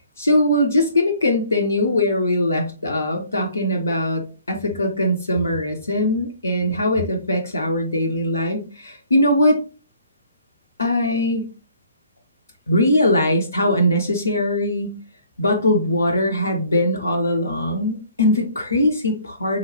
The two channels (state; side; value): inverted; both; correlation -0.58